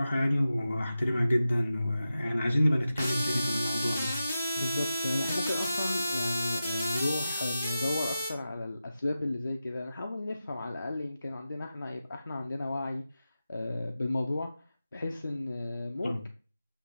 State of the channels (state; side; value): inverted; both; correlation -0.92